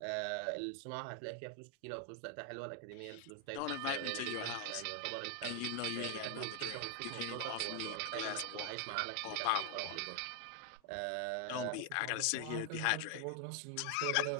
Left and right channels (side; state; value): both; different; correlation 0.00